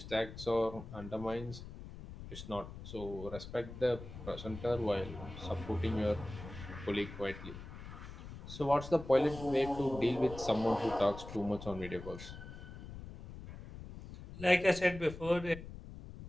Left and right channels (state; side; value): noise; left; rumble, 12 dB below the sound